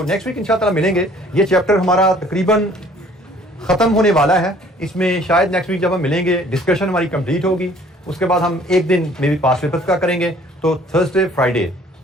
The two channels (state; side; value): normal; both; correlation 0.56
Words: नेक्स्ट वीक इंशाअल्लाह मिलेंगे। ये चैप्टर हमारा तकरीबन खत्म होने वाला है, इसमें शायद नेक्स्ट वीक जब हम मिलेंगे डिस्कशन हमारी कंप्लीट होगी, उसके बाद हम एक दिन मे बी पास पेपर्स का करेंगे। तो थर्सडे फ्राइडे